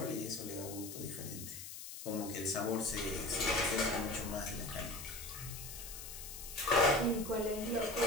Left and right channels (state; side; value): noise; left; hiss, 10 dB below the sound